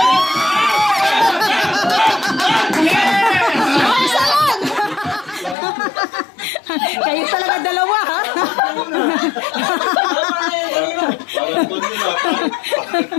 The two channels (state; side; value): drops out; right; at 5.6 s